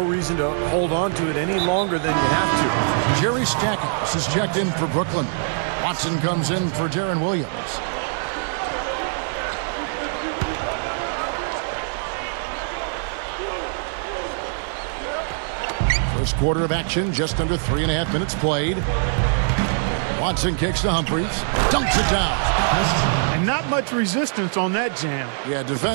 reason to hold on to it any longer than you have to. Jerry Stackhouse is checked in for Brooklyn. Watson comes in for Darren Williams. First quarter of action, just under 3.5 minutes played. Watson kicks to Humphries, dunks it down. And not much resistance on that jam. Yeah,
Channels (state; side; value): silent; left; digital silence